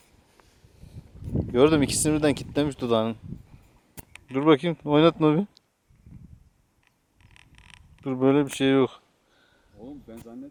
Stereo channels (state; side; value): identical; both; correlation 1.00